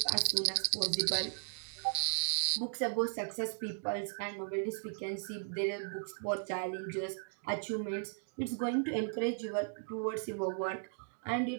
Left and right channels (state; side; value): silent; left; digital silence